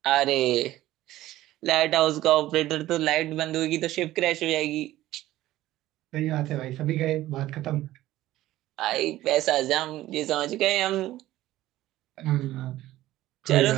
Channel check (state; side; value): quieter; left; 15.3 dB